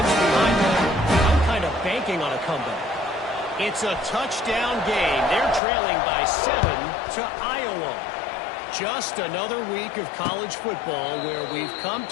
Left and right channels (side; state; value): right; drops out; at 5.6 s